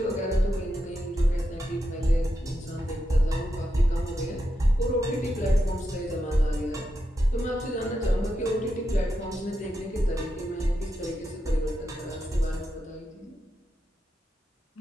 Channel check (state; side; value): normal; both; correlation 0.86